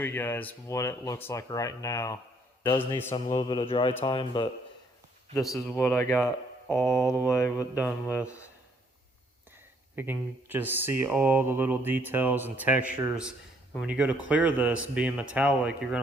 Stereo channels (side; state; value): both; normal; correlation 0.66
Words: you guys what it looks like right now. It does need some little bit of dry time, but this is what I got all the way done with. You can just see all the little details and textures. And when you go to clear this, being metallic, you're